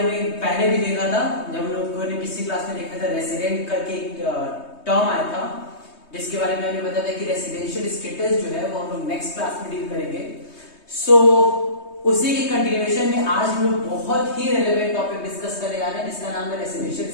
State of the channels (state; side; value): late; right; 3.2 ms